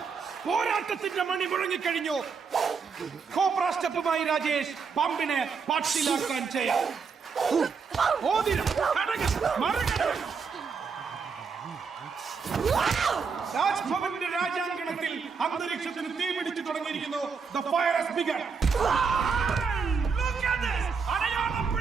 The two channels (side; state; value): left; quieter; 5.5 dB